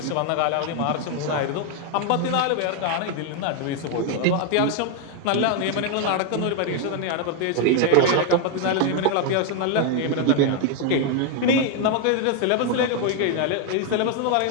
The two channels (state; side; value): different; both; correlation 0.01